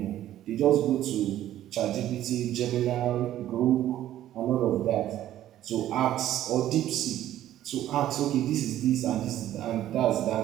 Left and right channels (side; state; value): left; quieter; 12.8 dB